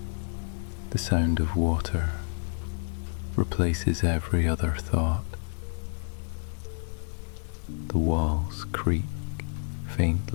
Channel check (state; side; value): silent; right; digital silence